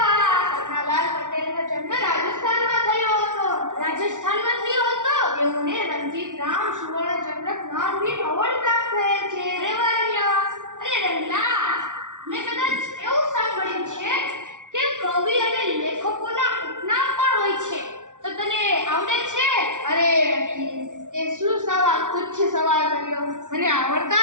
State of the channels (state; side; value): late; left; 0.87 ms